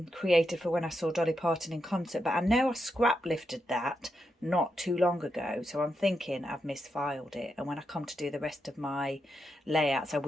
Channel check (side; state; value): both; normal; correlation 0.84